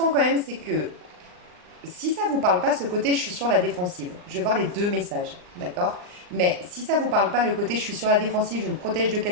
quand même, c'est que si ça vous parle pas, ce côté je suis sur la défensive, je vais voir les deux messages, d'accord? Mais si ça vous parle pas, le côté je suis sur la défensive, je me protège de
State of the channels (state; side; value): late; left; 39 ms